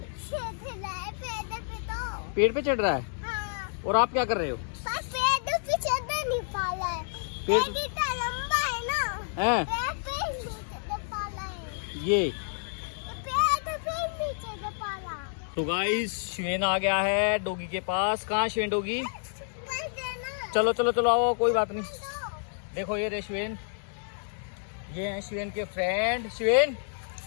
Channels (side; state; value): right; silent; digital silence